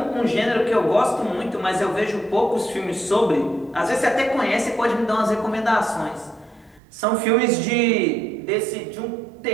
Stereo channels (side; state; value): left; drops out; at 6.8 s